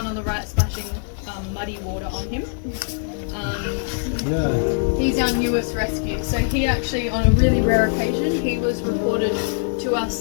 on the right, splashing muddy water on him. He's our newest rescue. So he actually, on a really rare occasion, he was reported to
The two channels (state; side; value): silent; right; 62 dB below the other